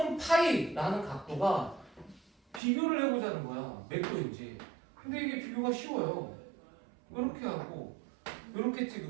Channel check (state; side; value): drops out; left; at 2.6 s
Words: 파이라는 각도가 비교를 해보자는 거야. 몇 도인지. 근데 이게 비교가 쉬워요. 이렇게 하고 이렇게